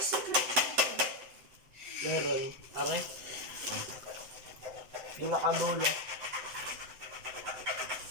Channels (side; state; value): left; late; 7.9 ms